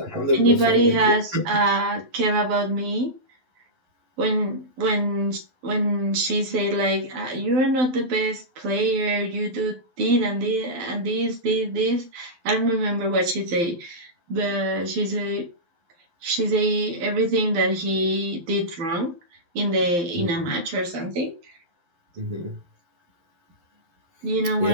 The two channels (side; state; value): left; late; 12 ms